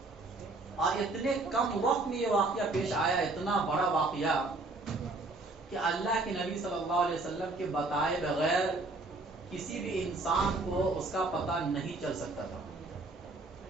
اور اتنے کم وقت میں یہ واقعہ پیش آیا، اتنا بڑا واقعہ کہ اللہ کے نبی صلی اللہ علیہ وسلم کے بتائے بغیر کسی بھی انسان کو اس کا پتہ نہیں چل سکتا تھا.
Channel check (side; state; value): left; quieter; 3.2 dB